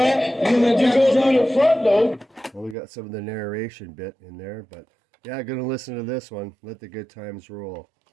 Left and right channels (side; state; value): left; drops out; at 2.8 s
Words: You go through the front door. Well, we got some of the narration bit in there, but yeah, gonna listen to this one. Let the good times roll.